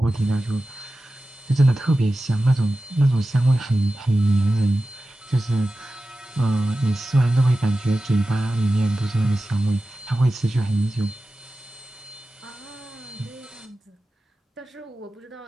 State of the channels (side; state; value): both; normal; correlation 0.94